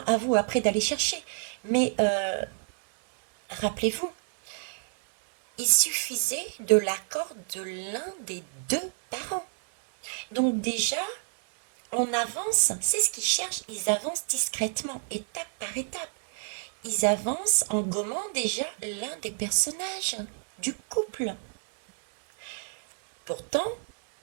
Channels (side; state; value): left; silent; 59 dB below the other